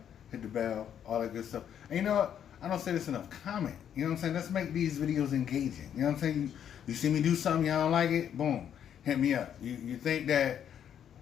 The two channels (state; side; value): quieter; right; 9.2 dB